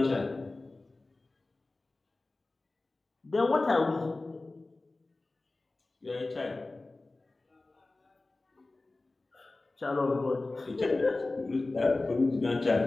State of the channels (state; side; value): quieter; right; 3.2 dB